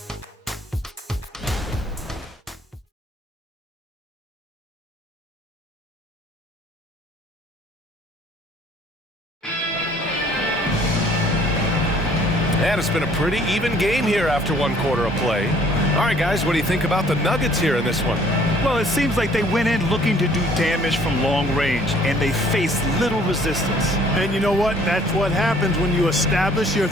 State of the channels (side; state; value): both; normal; correlation 0.58